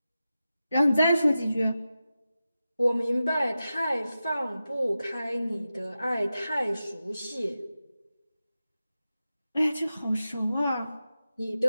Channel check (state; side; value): inverted; both; correlation -0.92